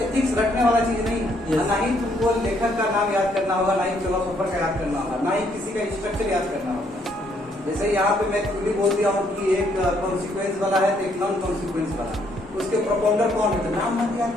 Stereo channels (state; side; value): normal; both; correlation 0.69